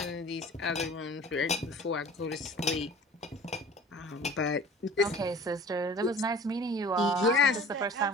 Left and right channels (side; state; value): both; normal; correlation 0.45